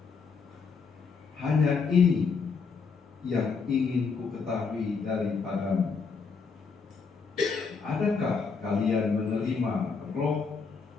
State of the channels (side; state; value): right; quieter; 5.2 dB